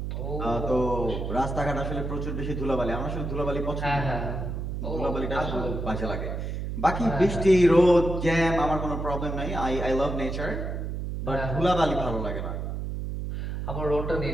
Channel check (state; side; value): noise; right; hum, 4 dB below the sound